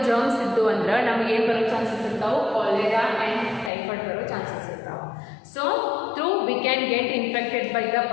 ಜರ್ಮ್ಸ್ ಇದ್ದು ಅಂದ್ರೆ ನಮಗೇನು ಬರೋ chances ಇರ್ತಾವೆ, cholera and typhoid ಬರೋ ಚಾನ್ಸಸ್ ಇರ್ತಾವೆ. So through we can get infected by the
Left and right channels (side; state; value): right; drops out; at 3.7 s